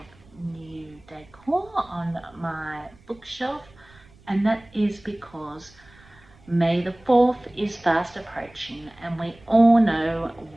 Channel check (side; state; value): right; noise; rumble, 26 dB below the sound